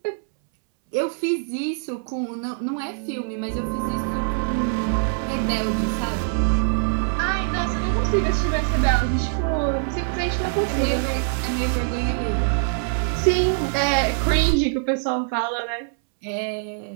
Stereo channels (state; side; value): silent; left; 63 dB below the other